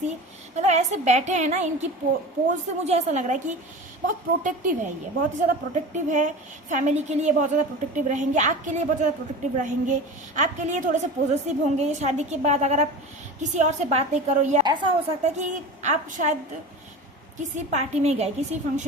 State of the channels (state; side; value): normal; both; correlation 0.32